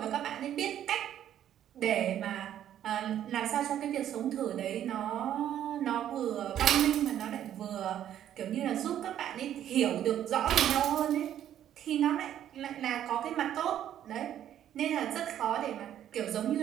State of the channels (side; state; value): left; quieter; 10.9 dB